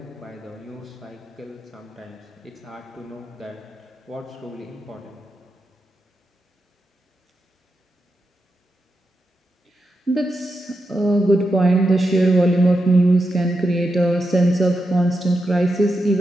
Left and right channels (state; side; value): normal; both; correlation 0.87